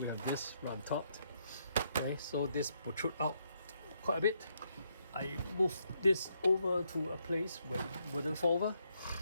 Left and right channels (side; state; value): both; inverted; correlation -0.76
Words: have this right on top. Okay, so this protrude out quite a bit. I moved this over to a place where it wouldn't fall over.